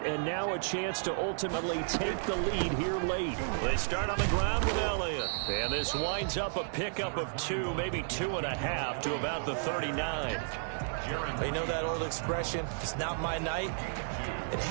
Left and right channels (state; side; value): silent; left; digital silence